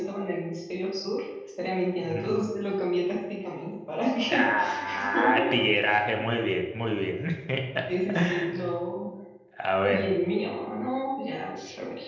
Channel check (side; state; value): both; identical; correlation 1.00